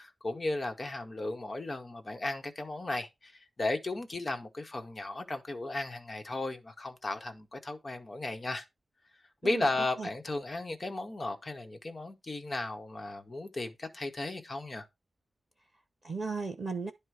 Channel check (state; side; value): normal; both; correlation 0.93